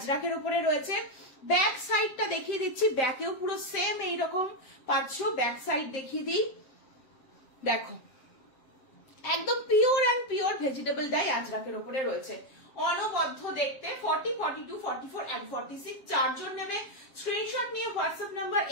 উপরে রয়েছে। ব্যাক সাইডটা দেখিয়ে দিচ্ছি, ব্যাকেও পুরো সেম এইরকম পাচ্ছ। ব্যাক সাইড দেখিয়ে দিই, দেখো একদম pure and pure vegetable dye আজরাকের উপরে রয়েছে, অনবদ্য দেখতে। 40, 42, 44 and 46, চারজন নেবে। স্ক্রিনশট নিয়ে হোয়াটসঅ্যাপ নাম্বার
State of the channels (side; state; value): right; late; 7.6 ms